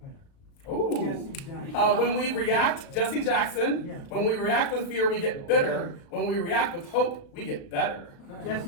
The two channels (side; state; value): right; late; 36 ms